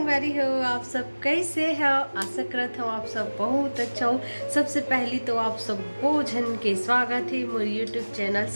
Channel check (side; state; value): both; inverted; correlation -1.00